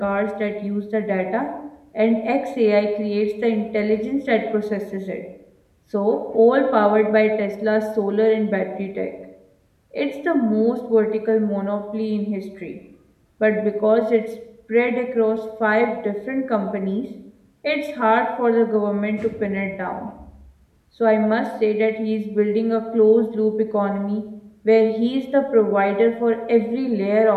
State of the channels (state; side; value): identical; both; correlation 1.00